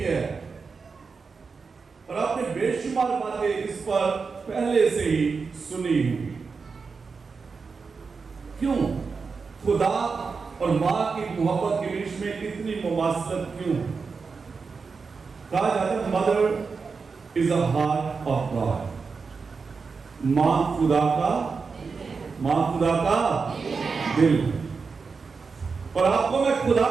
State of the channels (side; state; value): left; quieter; 4.9 dB